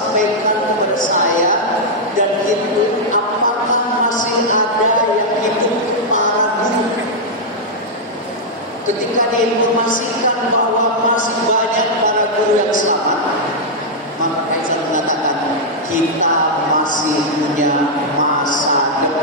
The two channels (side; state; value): both; normal; correlation -0.05